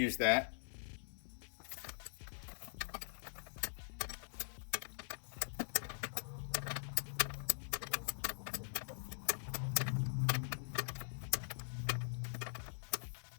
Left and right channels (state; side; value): silent; right; digital silence